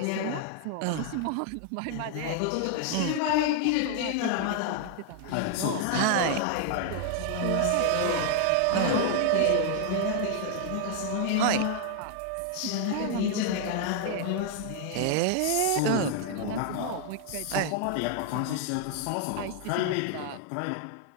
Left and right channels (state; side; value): different; both; correlation 0.00